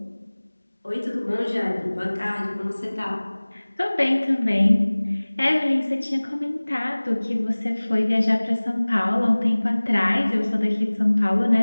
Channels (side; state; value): both; inverted; correlation -1.00